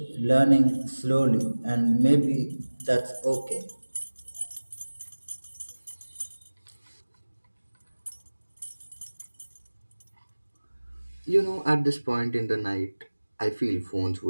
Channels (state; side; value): inverted; both; correlation -1.00